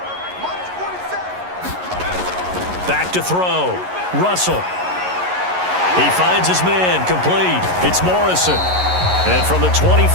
Back to throw. Russell. He finds his man. Complete. It's Morrison. And from the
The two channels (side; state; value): left; late; 11 ms